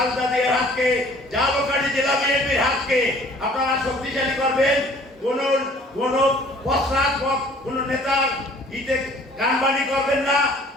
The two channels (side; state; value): both; normal; correlation 0.53